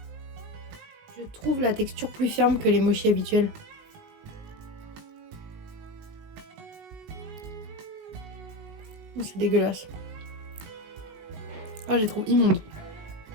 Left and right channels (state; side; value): late; left; 19 ms